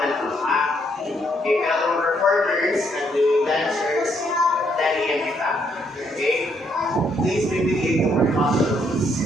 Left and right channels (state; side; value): normal; both; correlation 0.72